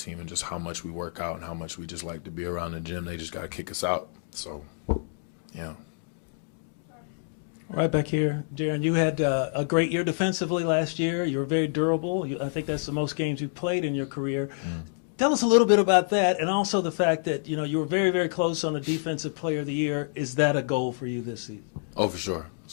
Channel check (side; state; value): right; silent; digital silence